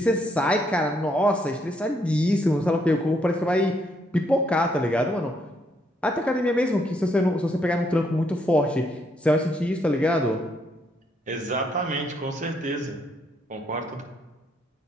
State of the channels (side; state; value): both; normal; correlation 0.73